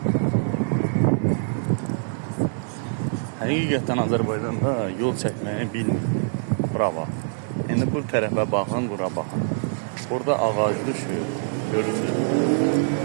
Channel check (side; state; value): left; silent; digital silence